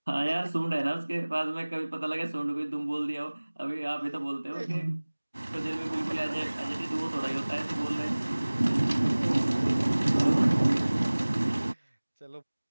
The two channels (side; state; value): both; inverted; correlation -1.00